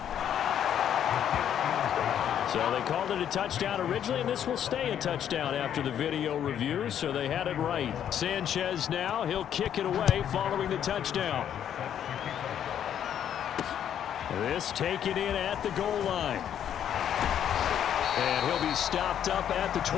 So they called it a touchdown originally, and this will stay a touchdown after the video review, so they had it right. Sanchez now, he'll kick it away following the touchdown. This taken in at the goal line. And he'll be stopped up at the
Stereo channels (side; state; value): right; quieter; 9.7 dB